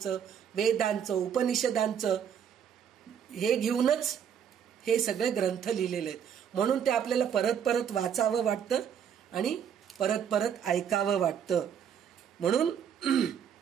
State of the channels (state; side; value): quieter; left; 8.3 dB